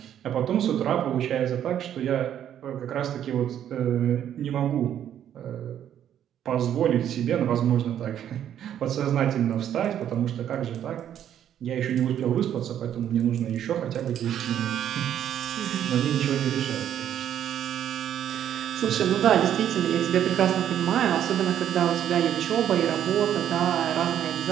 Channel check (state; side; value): quieter; left; 10.2 dB